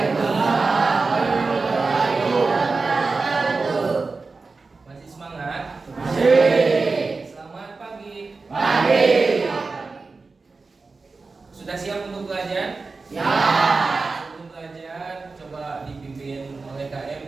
warahmatullahi wabarakatuh. Masih semangat? Masih. Selamat pagi. Pagi. Sudah siap untuk belajar? Siap. Sebelum belajar, coba dipimpin oleh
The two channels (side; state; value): left; quieter; 4.1 dB